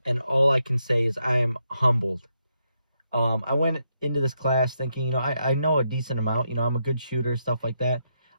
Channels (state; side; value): inverted; both; correlation -0.80